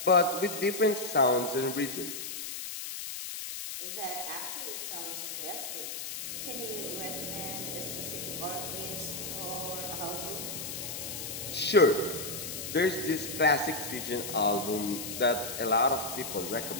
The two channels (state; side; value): noise; left; hiss, 6 dB below the sound